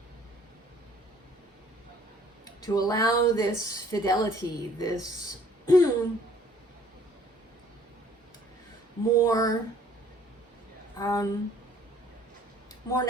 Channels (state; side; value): normal; both; correlation 0.58